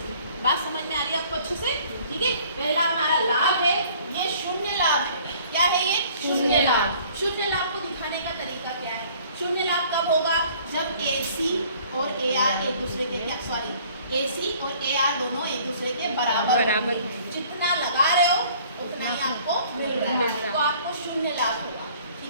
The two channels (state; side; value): inverted; both; correlation -0.55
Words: बात समझ में आ रही है आपको अच्छे से? ठीक है, पहला हमारा लाभ है, ये शून्य लाभ है। क्या है ये? शून्य लाभ। शून्य लाभ को दिखाने का तरीका क्या है? शून्य लाभ कब होगा? जब AC और AR एक दूसरे के AC और AR दोनों एक दूसरे के बराबर होंगे। जितना लगा रहे हो उतना ही आपको मिल रहा है, तो आपको शून्य लाभ होगा।